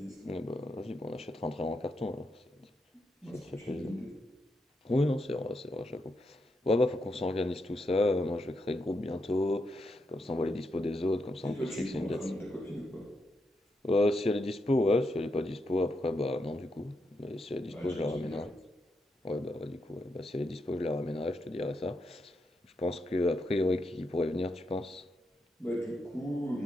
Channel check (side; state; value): both; normal; correlation 0.83